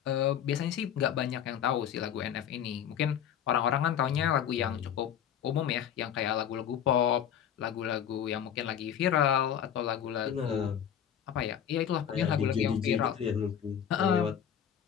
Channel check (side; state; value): right; quieter; 9.2 dB